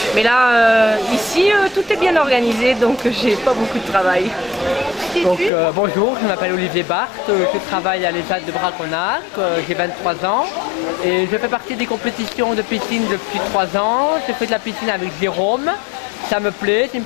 mais là ici tout est bien organisé donc j'ai pas beaucoup de travail. Donc, bonjour, je m'appelle Olivier Barthes, je travaille à l'ESAT de Braconnac, j'ai 23 ans et je fais partie des compétitions de piscine depuis 3 ans. Je fais de la piscine avec Jérôme, ça me plaît, c'est une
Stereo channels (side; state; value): right; drops out; at 5.5 s